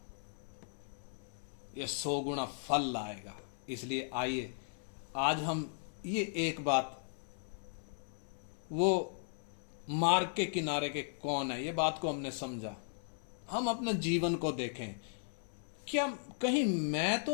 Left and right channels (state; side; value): silent; right; 53 dB below the other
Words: ये 100 गुना फल लाएगा। इसलिए आइए आज हम ये एक बात, वो मार्ग के किनारे के कौन है, ये बात को हमने समझा। हम अपने जीवन को देखें, क्या कहीं मैं